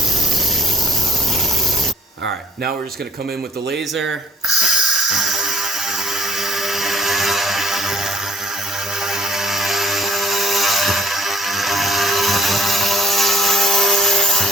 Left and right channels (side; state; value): both; normal; correlation 0.59